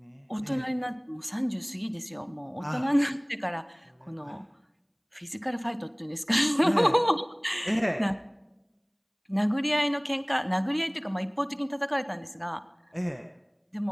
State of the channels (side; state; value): both; identical; correlation 1.00